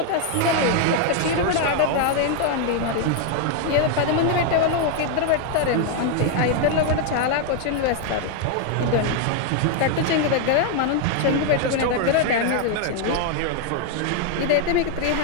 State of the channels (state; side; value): different; both; correlation 0.00